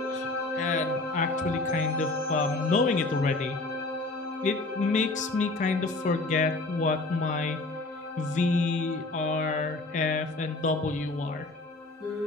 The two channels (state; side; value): quieter; right; 3.1 dB